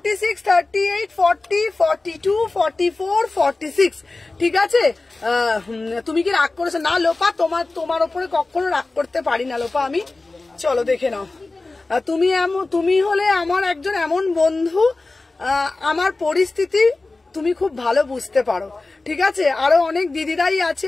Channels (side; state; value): right; quieter; 3.3 dB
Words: 38, 40, 42, 44, 46, ঠিক আছে? তুমি কি রাগ করেছো? না লোপা, তোমার ওপরে কখনো রাগ করতে পারি না লোপা আমি। চলো দেখে নাও, তুমি হলে আমার একজন এমন বন্ধু, আমার পরিস্থিতি তুমি খুব ভালো বুঝতে পারো, ঠিক আছে। আরো অনেক দিদিরাই আছে,